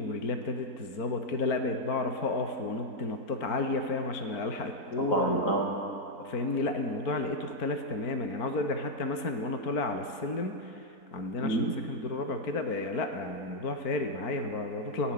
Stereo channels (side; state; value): right; late; 4.4 ms